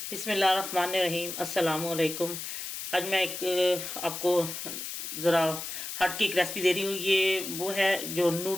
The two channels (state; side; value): noise; left; hiss, 7 dB below the sound